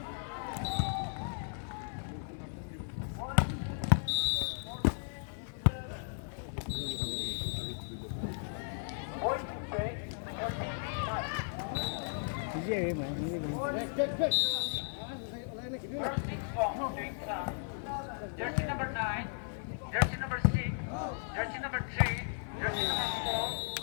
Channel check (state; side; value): silent; right; 54 dB below the other